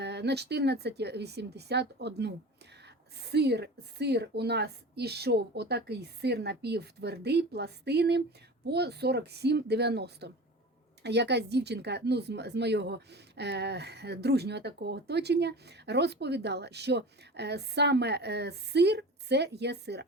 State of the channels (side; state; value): both; normal; correlation 0.35